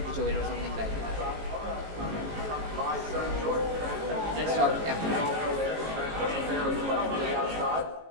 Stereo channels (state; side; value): late; left; 18 ms